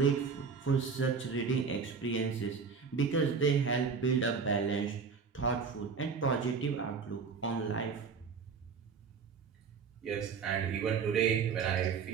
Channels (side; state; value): left; quieter; 5.6 dB